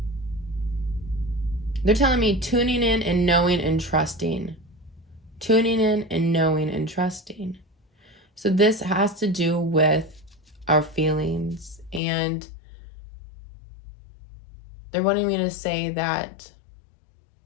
they're telling me tuning in and knowing and trusting. Tuning in and knowing and trusting. So this has to do with our feelings, and they're wanting me to say that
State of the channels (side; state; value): right; drops out; at 12.0 s